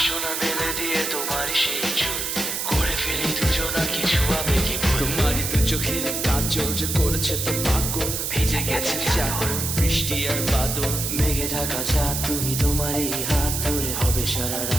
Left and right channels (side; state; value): right; noise; hiss, 2 dB below the sound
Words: না মেলে দিয়ে তোমারই সেই চুল, করে ফেলি দুজনা কিছু আবেগী ভুল। তোমারই দু চোখের কাজল যে করেছে তো পাগল, ভিজে গেছে চাদর, বৃষ্টি আর বাদল, মেঘে ঢাকা চাঁদ তুমি তোমারই হাত ধরে হবে সারা